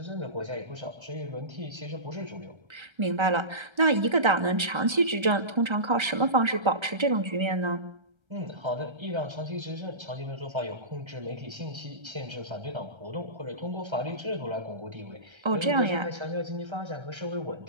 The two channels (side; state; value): left; late; 1.3 ms